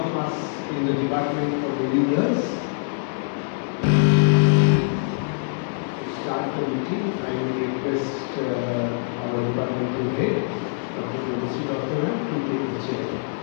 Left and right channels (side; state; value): right; silent; digital silence